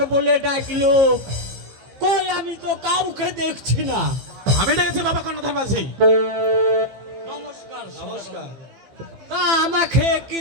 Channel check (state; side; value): late; left; 15 ms